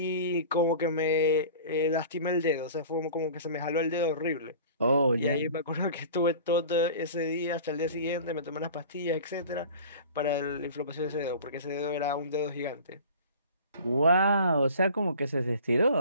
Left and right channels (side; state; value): both; inverted; correlation -0.41